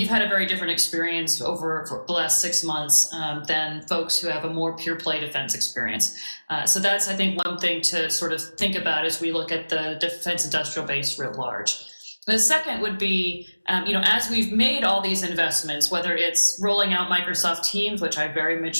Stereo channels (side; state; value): both; inverted; correlation -1.00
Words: had a very different experience over for the last 6 months than folks who have a more pure play defense experience. So that's, I think, one thing to sort of think about as we look at the defense industrial base writ large. The second would be, as we've made all these investments, whether it's rolling out Microsoft Teams, which I very